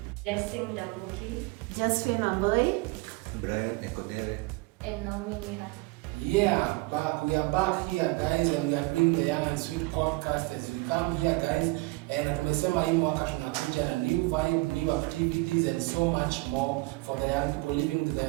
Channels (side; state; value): left; quieter; 24.2 dB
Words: Blessing Dambuki. Josephine Amboy. Brian Ekodere. And Naomi Niha. Yeah, we are back here guys and we are doing the Young and Sweet podcast as we come here guys and tumesema hii mwaka tunakuja na new vibe, new activities and so much more for the young people living with